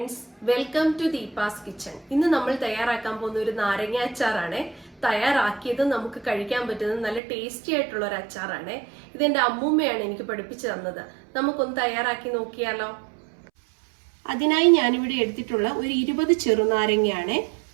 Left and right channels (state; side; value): drops out; left; at 7.2 s